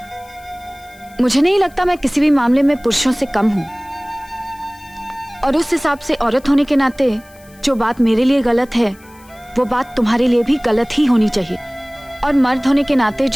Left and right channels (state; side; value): noise; left; hiss, 27 dB below the sound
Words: मुझे नहीं लगता मैं किसी भी मामले में पुरुषों से कम हूं, और उस हिसाब से औरत होने के नाते जो बात मेरे लिए गलत है वो बात तुम्हारे लिए भी गलत ही होनी चाहिए, और मर्द होने के नाते